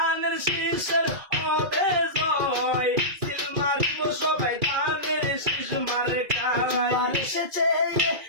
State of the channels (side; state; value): left; late; 2.3 ms